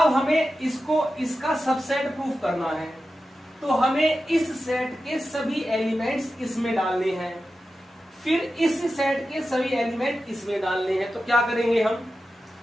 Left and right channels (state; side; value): normal; both; correlation 0.92